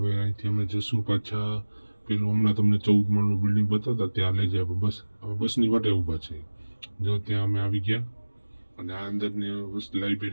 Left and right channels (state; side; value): inverted; both; correlation -1.00